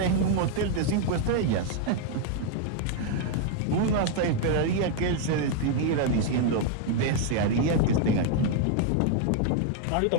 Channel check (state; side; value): different; both; correlation 0.00